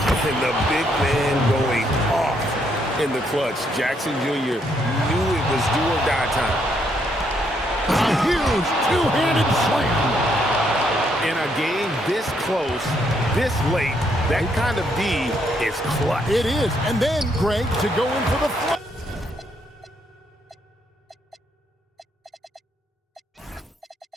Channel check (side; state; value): both; normal; correlation 0.73